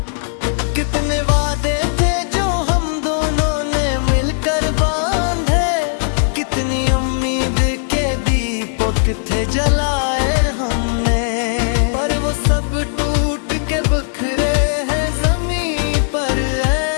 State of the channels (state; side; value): silent; right; digital silence